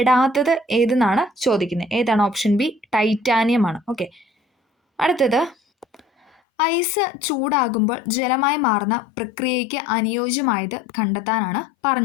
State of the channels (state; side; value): drops out; right; at 6.3 s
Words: ഏതെന്നാണ് ചോദിക്കുന്നത്. ഏതാണ്? ഓപ്ഷൻ ബി, ടൈറ്റാനിയം ആണ്. ഓക്കെ. അടുത്തത്, ഐസ് ചൂടാകുമ്പോൾ ജലമായി മാറുന്ന പ്രക്രിയയ്ക്ക് അനുയോജ്യമായത് കണ്ടെത്താനാണ്